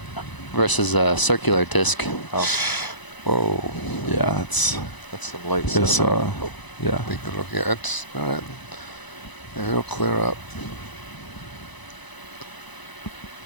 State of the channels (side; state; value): right; late; 1.0 ms